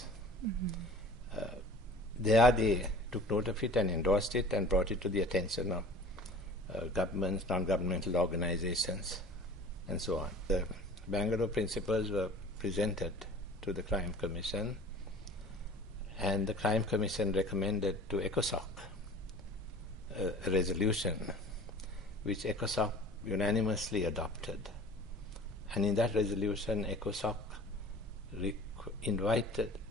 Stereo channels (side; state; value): both; normal; correlation 0.44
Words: There they took note of it and endorsed it and brought it to the attention of governments, non-governmental organizations, and so on. The Bangalore Principles were presented to the Crime Commission, and the Crime Commission recommended to ECOSOC a resolution which ECOSOC unanimously adopted. And in that resolution, ECOSOC